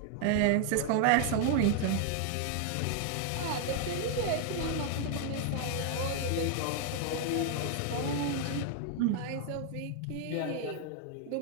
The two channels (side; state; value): both; different; correlation 0.00